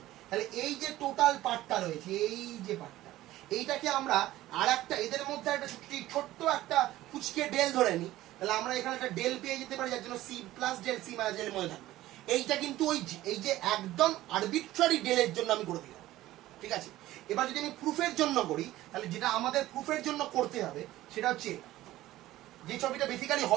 তাহলে এই যে টোটাল পার্টটা রয়েছে, এই যে পার্টটা, এইটাকে আমরা আর একটা এদের মধ্যে একটা ছোট্ট একটা ফুচকে ডেল ধরে নিই, তাহলে আমরা এখানে একটা ডেল পেয়ে যেতে পারি, যার জন্য C plus del C minus del মধ্যে থাকবে। এইটা কিন্তু এই যে একদম আরবিট্রারি ডেলের জন্য আমি করে দিলাম, ঠিক আছে। এবার যদি আমি প্রুফের জন্য করি, তাহলে যেটা আমাদের প্রুফের জন্য করতে হবে সেটা হচ্ছে যে ছবিটা বেসিক্যালি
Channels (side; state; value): left; quieter; 15.6 dB